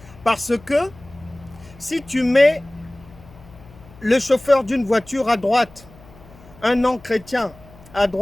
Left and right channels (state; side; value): noise; left; hum, 23 dB below the sound